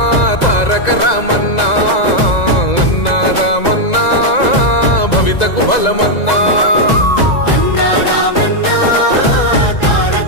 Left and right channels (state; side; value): late; right; 2.0 ms